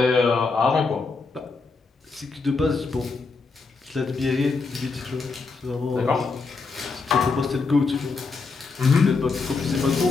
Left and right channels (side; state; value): right; quieter; 4.3 dB